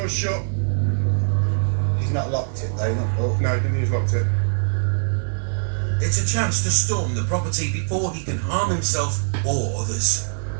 shut. He's not locked it though, not oh. No, he's locked it. It's a chance to storm the property before he can harm himself or others.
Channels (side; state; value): left; silent; digital silence